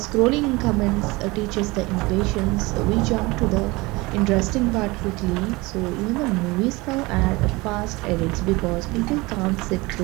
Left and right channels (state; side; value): quieter; left; 23.0 dB